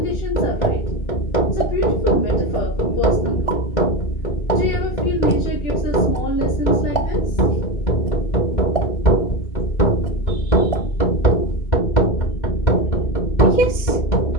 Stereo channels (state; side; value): late; right; 2.1 ms